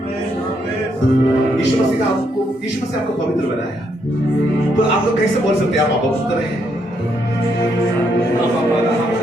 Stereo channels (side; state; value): both; normal; correlation 0.75